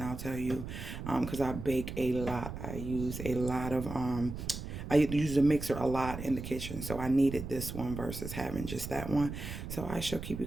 I'll tell you, because I bake a lot. I use a lot of I use the mixer a lot in the kitchen, so I needed this one versus having just that one. So I shall keep you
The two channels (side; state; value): right; noise; rumble, 8 dB below the sound